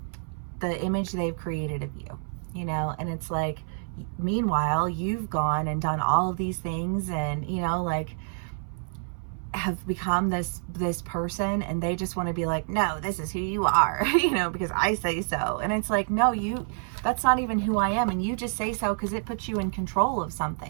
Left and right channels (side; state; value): left; silent; 60 dB below the other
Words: image they've created of you, you know. And it's like, meanwhile, you've gone and done all of these things and, you know, like, have become this person, and they just want to be like, no, this is who you are, you know, because I say so. And it's like, no, that's not even who I am, and you just say so because it puts you in control of